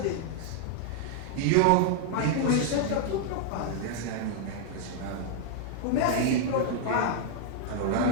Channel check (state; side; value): different; both; correlation 0.00